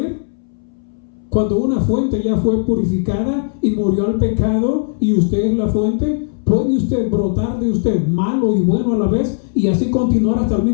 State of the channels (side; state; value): right; silent; 65 dB below the other